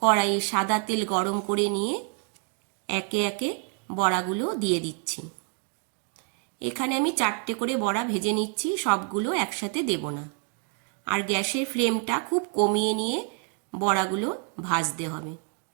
কড়াইয়ে সাদা তেল গরম করে নিয়ে একে একে বড়াগুলো দিয়ে দিচ্ছি। এখানে আমি 4টে করে বড়া ভেজে নিচ্ছি, সবগুলো একসাথে দেব না। আর গ্যাসের ফ্লেমটা খুব কমিয়ে নিয়ে বড়াগুলো ভাজতে হবে।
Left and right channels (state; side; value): quieter; left; 37.8 dB